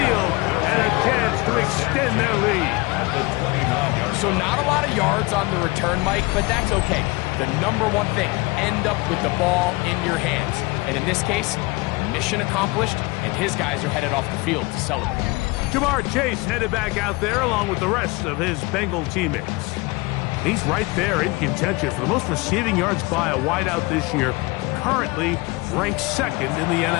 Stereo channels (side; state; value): right; quieter; 24.1 dB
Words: and a chance to extend their lead. So not a lot of yards on the return, Mike, but that's okay. The number one thing, end up with the ball in your hands. And in this case, mission accomplished, and his guys are headed off the field to celebrate. Jamar Chase headed back out there along with the rest of his Bengal teammates. And he's right there in contention for the most receiving yards by a wideout this year, currently ranked 2nd in the